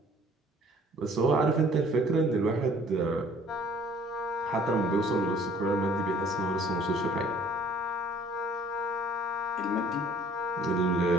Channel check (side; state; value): both; normal; correlation 0.55